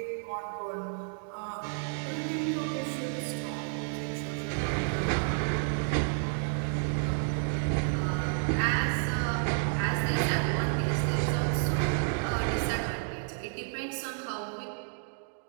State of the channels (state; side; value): silent; left; 57 dB below the other